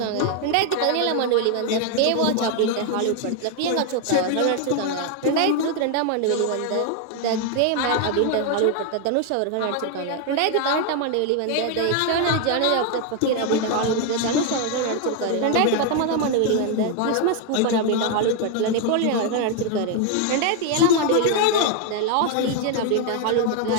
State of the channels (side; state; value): both; different; correlation 0.01